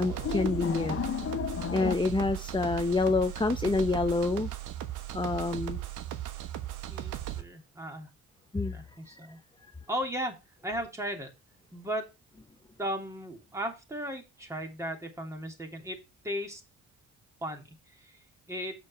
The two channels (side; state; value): both; normal; correlation 0.59